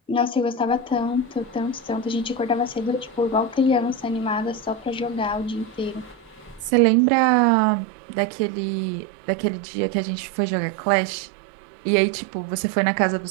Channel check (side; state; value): left; drops out; at 6.7 s